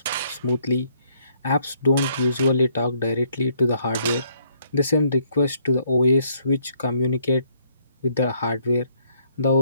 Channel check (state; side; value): inverted; both; correlation -0.69